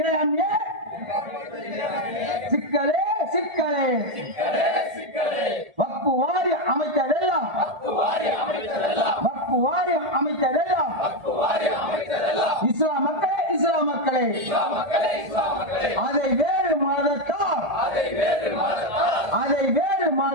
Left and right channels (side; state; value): left; late; 1.8 ms